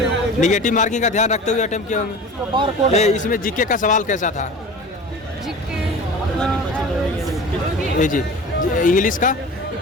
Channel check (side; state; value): both; normal; correlation 0.37